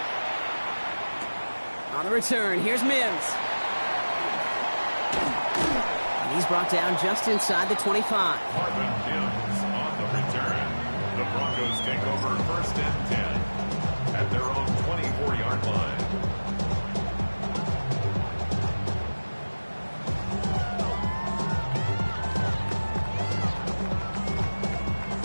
On the return, here's Mims. And he's brought down just inside the 25. Marvin Mims on the return. The Broncos take over 1st and 10 at their own 24-yard line.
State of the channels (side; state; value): both; inverted; correlation -1.00